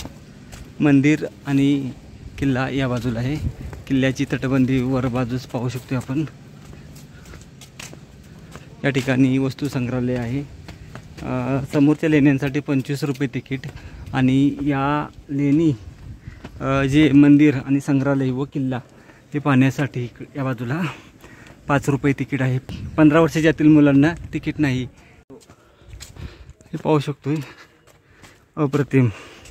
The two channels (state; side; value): identical; both; correlation 1.00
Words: मंदिर आणि किल्ला या बाजूला आहे। किल्ल्याची तटबंदी वर बाजूस पाहू शकतो आपण। या ठिकाणी वस्तू संग्रहालय आहे। समोरच्या लेण्यांसाठी 25 रुपये तिकीट आणि या लेणी जे मंदिर आणि संग्रहालय व किल्ला ते पाहण्यासाठी या बाजूला 5 रुपये तिकीट आहे। 15 वर्षाच्या आतील मुलांना तिकीट नाही। हे पाहू शकतोय, अप्रतिम।